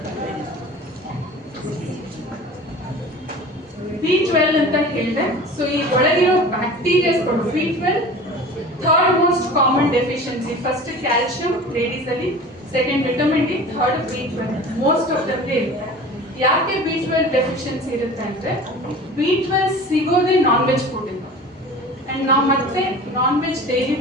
B12 ಅಂತ ಹೇಳಿದೆ. ಸೊ ಈ ಒಳಗಿರೋ ಬ್ಯಾಕ್ಟೀರಿಯಾಸ್ಗಳು B12 third most common deficiency. First calcium ladies ಅಲ್ಲಿ, second vitamin D, third B12 most of the ಇರುತ್ತೆ. ಯಾಕೆ B12 ಡೆಫಿಷಿಯನ್ಸಿ ಇರುತ್ತೆ ಅಂದ್ರೆ, B12 ಸಿಗೋದೇ ನಾನ್ ವೆಜ್ ಫುಡ್ ಇಂದ, ಅಂಡ್ ನಾವು ಮತ್ತೆ ನಾನ್ ವೆಜ್ ಡೈಲಿ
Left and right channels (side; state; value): both; normal; correlation 0.39